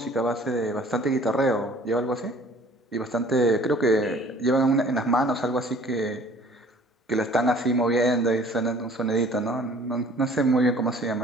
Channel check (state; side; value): normal; both; correlation 0.52